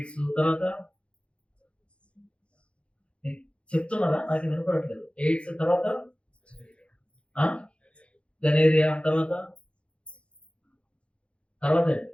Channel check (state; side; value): late; right; 0.059 ms